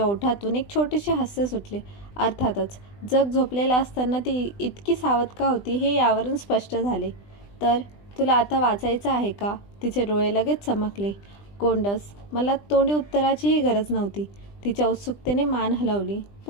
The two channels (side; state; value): right; late; 20 ms